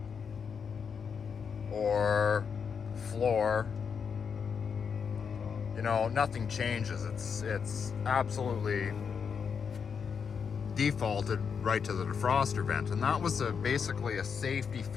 or floor. Nothing changes. It's absolutely defaulted right to the defroster vent, and that was basically a safety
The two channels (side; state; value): right; quieter; 6.4 dB